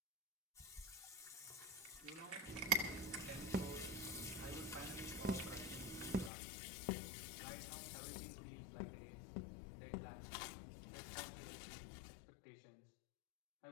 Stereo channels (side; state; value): right; drops out; at 6.3 s